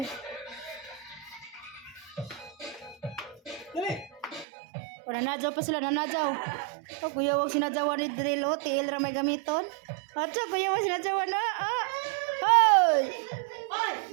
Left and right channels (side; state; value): left; drops out; at 4.5 s